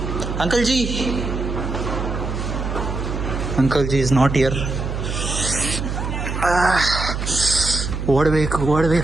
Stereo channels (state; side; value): noise; right; hum, 4 dB below the sound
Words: Uncle G, uncle G is not here. ಓಡಬೇಕು